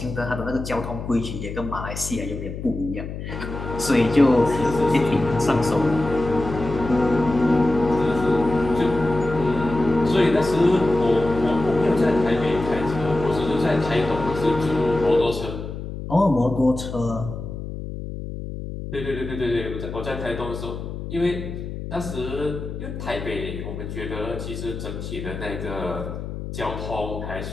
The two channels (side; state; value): left; noise; hum, 8 dB below the sound